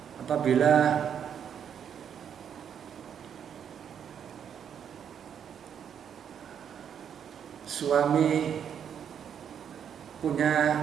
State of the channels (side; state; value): left; quieter; 8.3 dB